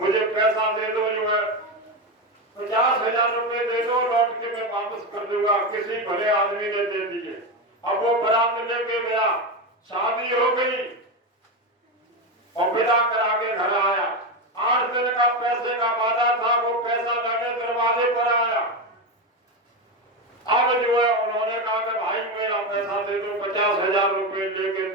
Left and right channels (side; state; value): both; normal; correlation 0.14